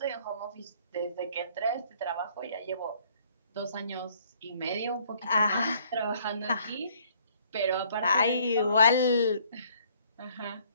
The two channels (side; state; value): both; inverted; correlation -0.61